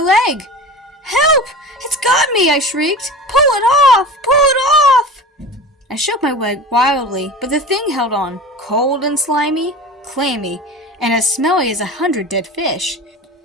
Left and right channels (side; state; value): both; normal; correlation 0.34